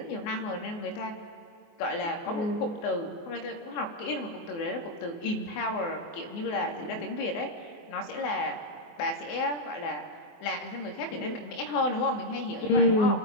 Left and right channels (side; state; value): right; late; 24 ms